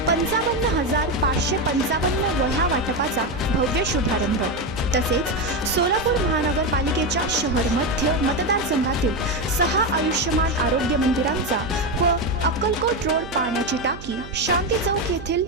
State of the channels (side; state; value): right; noise; hum, 14 dB below the sound